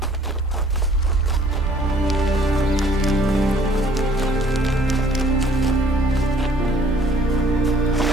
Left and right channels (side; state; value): both; normal; correlation 0.58